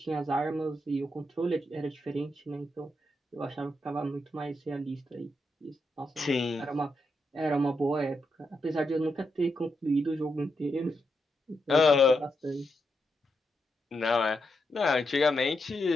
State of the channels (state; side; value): normal; both; correlation 0.83